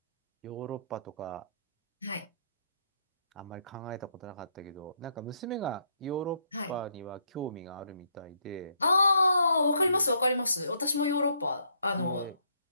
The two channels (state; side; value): inverted; both; correlation -0.72